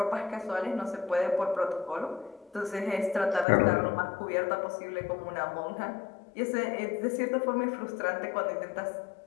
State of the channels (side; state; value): right; drops out; at 3.5 s